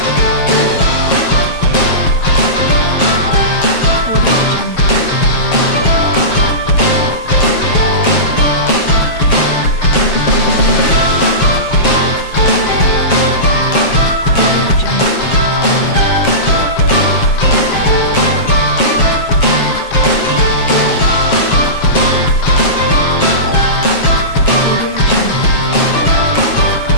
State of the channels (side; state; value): right; late; 7.3 ms